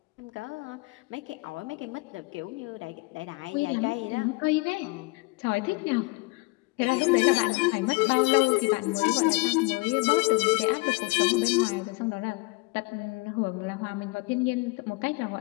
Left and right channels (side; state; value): right; quieter; 27.0 dB